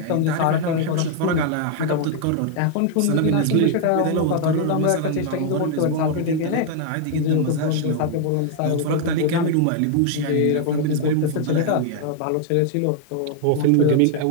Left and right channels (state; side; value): different; both; correlation 0.00